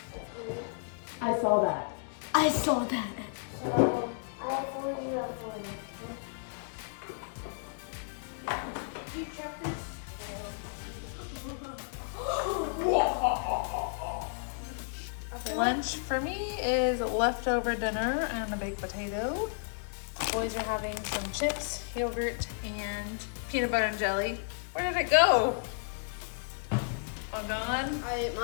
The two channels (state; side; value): silent; right; digital silence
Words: I saw that. I saw that. So I have 40, you have 40. Did you check this? Lunch for me is leftover dinner and a baked potato. Boys are having some chips, yogurt, and peanut butter and jelly. Where did it go? All gone? I ate